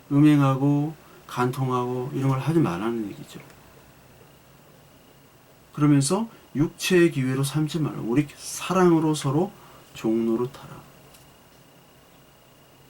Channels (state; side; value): identical; both; correlation 1.00